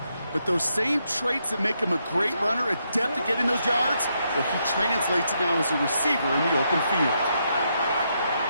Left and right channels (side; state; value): both; inverted; correlation -0.79